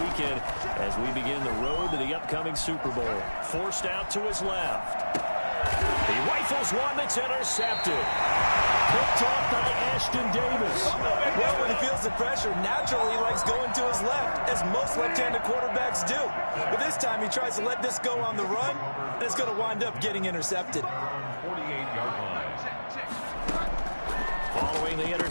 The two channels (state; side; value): inverted; both; correlation -1.00